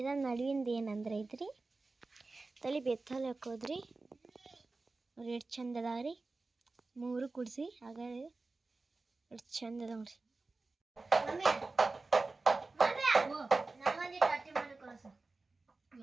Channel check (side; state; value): left; quieter; 3.6 dB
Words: ನಡುವಿಂದ ಏನಂದ್ರೆ ಐತ್ರಿ ತಲೆ ಬೆತ್ತಲ್ಲಿ ಹಾಕೋದ್ರಿ. ನೋಡ್ರಿ ಎಷ್ಟು ಚಂದ ಅದಾವ್ರಿ. 3 ಕುಡಿಸಿ ಆಗ ಎಷ್ಟು ಚಂದ ಅದಾವ್ರಿ.